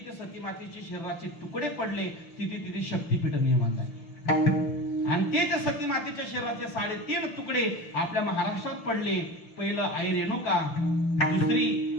सती मातेचे शरीराचे तुकडे पडले तिथे तिथे शक्तीपीठ निर्माण झाले. आणि ते जे सती मातेच्या शरीराचे 3.5 तुकडे आपल्या महाराष्ट्रात पडले. पहिलं आई रेणुका,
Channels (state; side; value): late; right; 6.7 ms